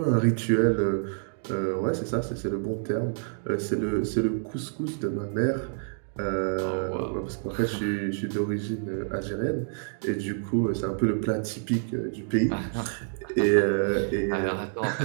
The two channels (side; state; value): left; silent; digital silence